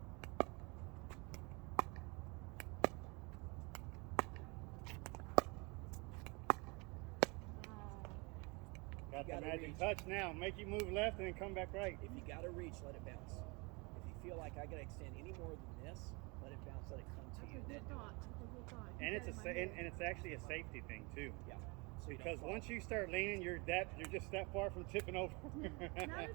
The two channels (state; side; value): quieter; left; 28.8 dB